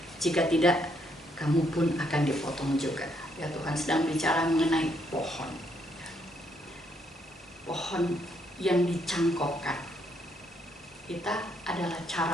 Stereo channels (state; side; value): normal; both; correlation 0.73